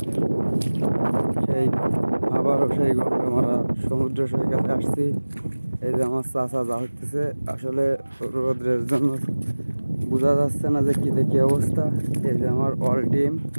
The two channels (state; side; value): inverted; both; correlation -1.00